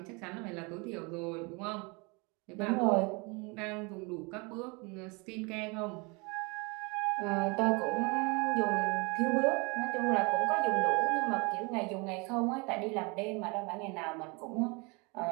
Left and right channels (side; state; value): left; quieter; 29.3 dB